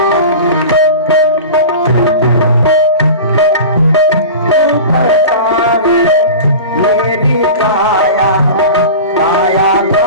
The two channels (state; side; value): inverted; both; correlation -0.33